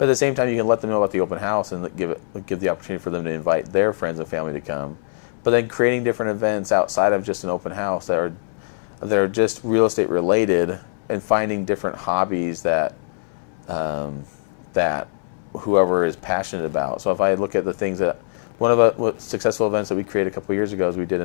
at the same time, you can let them know about the open house and give the opportunity for them to invite their friends and family to come. But then creating different events outside of just an open house that are just real estate related, and finding different hobbies that whoever is passionate about. So if I look at the things that one of the successful events that we created a couple of years ago is we did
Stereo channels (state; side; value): silent; right; 64 dB below the other